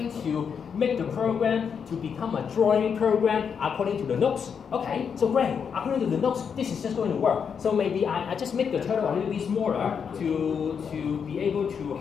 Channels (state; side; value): quieter; right; 6.8 dB